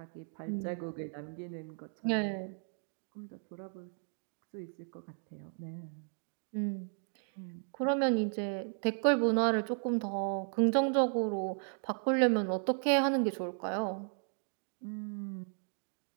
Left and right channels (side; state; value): left; silent; 54 dB below the other